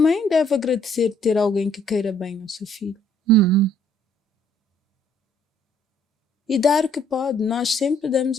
deve agradecer ter alguém que queira bem ao seu filho. E dar o que pode. Nós sempre damos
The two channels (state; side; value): normal; both; correlation 0.63